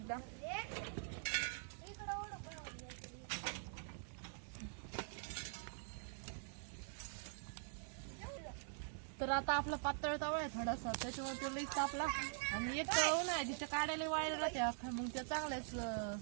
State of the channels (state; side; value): silent; left; digital silence